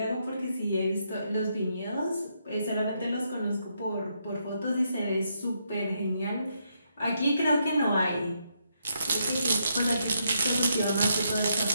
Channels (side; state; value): both; inverted; correlation -0.78